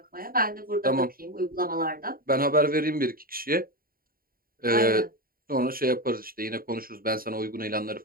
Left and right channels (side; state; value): left; late; 0.42 ms